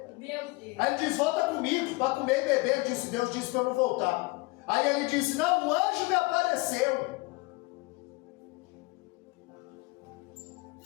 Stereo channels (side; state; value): right; quieter; 25.0 dB